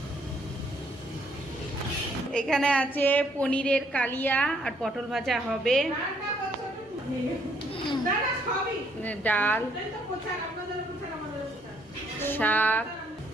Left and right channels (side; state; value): both; normal; correlation 0.68